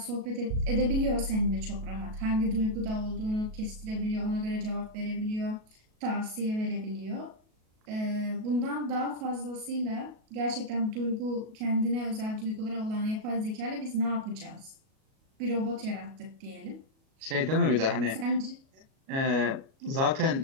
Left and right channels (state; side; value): late; left; 37 ms